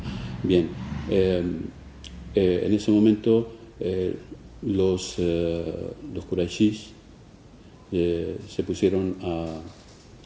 Bien, en ese momento los Qurayshis se pusieron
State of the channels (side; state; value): both; identical; correlation 1.00